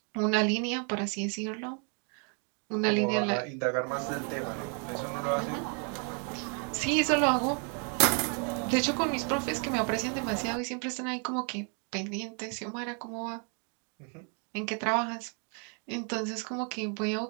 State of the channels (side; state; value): left; quieter; 39.2 dB